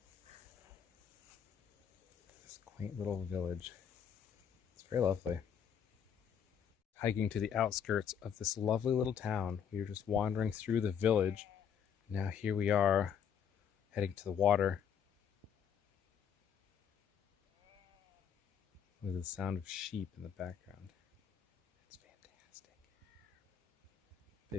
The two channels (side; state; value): right; quieter; 8.0 dB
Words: This quaint little village. It's very lovely. Hiking to the outskirts of this lovely little town. We were just wandering through the village. Now here we are, heading to the water. With the sound of sheep in the background. It's fantastic.